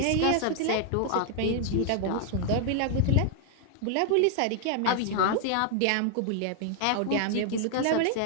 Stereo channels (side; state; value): both; different; correlation 0.00